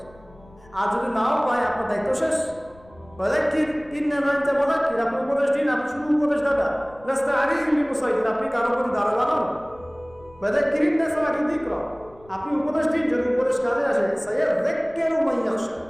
আর যদি নাও পায়, আপনার দায়িত্ব শেষ। আপনি উপদেশ দিন, আপনি শুধু উপদেশ দাদা, আপনি কারো প্রতি দারোগা নন। আপনি উপদেশ দিন, যদি উপদেশ কাজে আসে,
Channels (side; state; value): left; noise; rumble, 26 dB below the sound